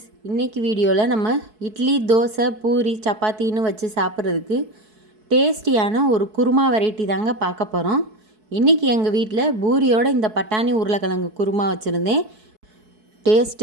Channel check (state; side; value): late; left; 4.6 ms